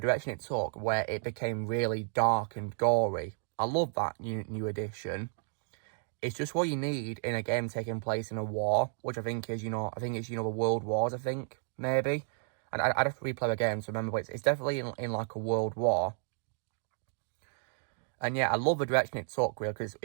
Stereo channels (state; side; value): silent; left; 56 dB below the other